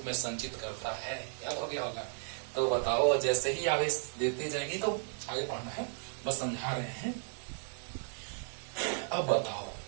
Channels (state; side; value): silent; left; 55 dB below the other